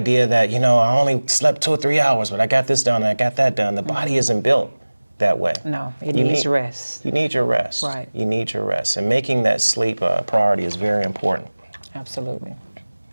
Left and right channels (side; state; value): both; inverted; correlation -1.00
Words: that, I only slept 2 or 3 hours, but I got this done and I got that done. The body isn't built that way. No, it needs rest. You need your rest. Right. You need your rest. And making that sleep a priority is very important. Absolutely.